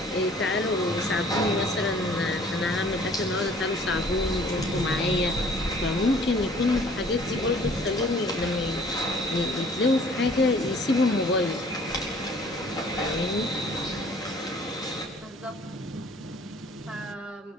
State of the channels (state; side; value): normal; both; correlation 0.54